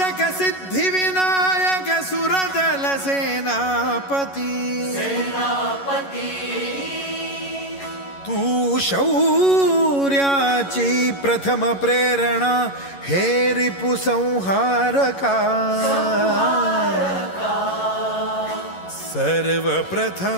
सिद्धि विनायक सुरदल सेनापति। तू शौर्याची प्रथम प्रेरणा, हे रिपु संहारका।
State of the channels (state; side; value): late; right; 11 ms